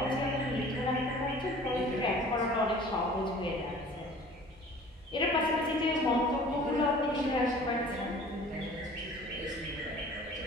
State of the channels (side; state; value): both; normal; correlation 0.47